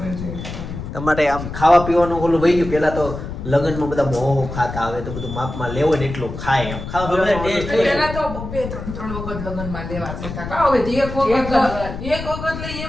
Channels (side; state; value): left; noise; rumble, 8 dB below the sound